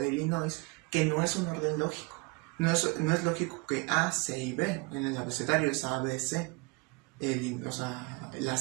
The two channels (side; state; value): left; quieter; 27.8 dB